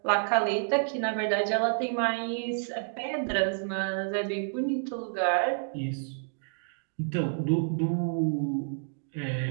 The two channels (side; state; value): left; silent; digital silence